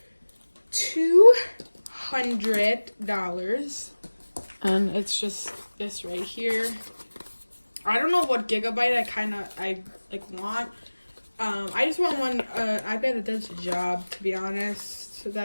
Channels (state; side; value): inverted; both; correlation -1.00